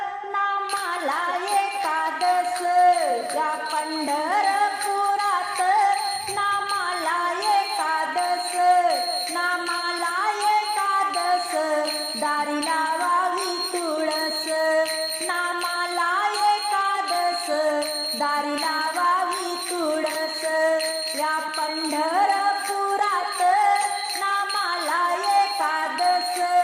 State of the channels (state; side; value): identical; both; correlation 1.00